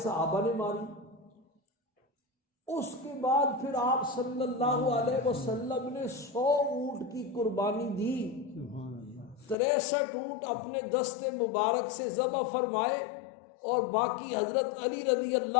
صحابہ نے ماری۔ اس کے بعد پھر آپ صلی اللہ علیہ وسلم نے 100 اونٹ کی قربانی دی۔ 63 اونٹ اپنے دست مبارک سے ذبح فرمائے اور باقی حضرت علی رضی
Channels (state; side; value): drops out; right; at 9.6 s